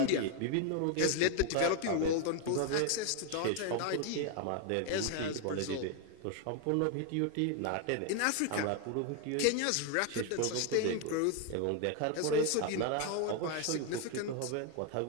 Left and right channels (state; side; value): different; both; correlation 0.01